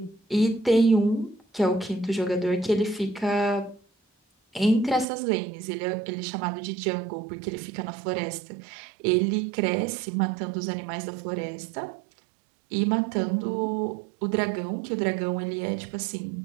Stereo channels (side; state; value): left; drops out; at 5.1 s